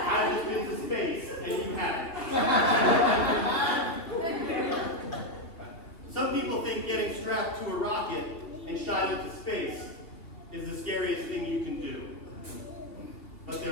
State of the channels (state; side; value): late; right; 2.9 ms